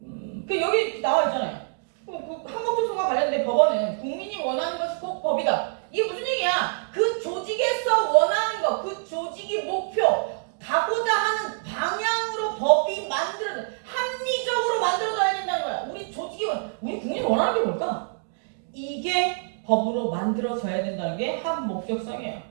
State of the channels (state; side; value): silent; left; digital silence